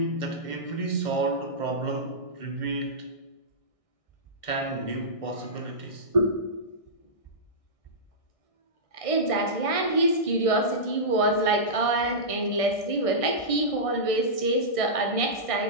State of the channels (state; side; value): late; right; 1.6 ms